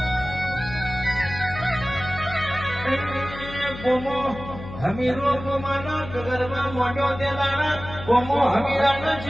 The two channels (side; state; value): left; noise; hum, 12 dB below the sound